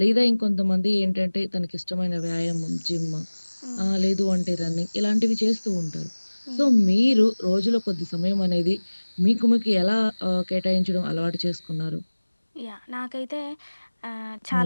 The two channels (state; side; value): inverted; both; correlation -1.00